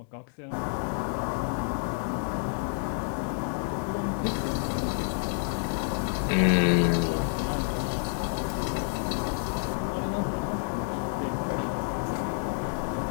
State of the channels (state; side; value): silent; right; 57 dB below the other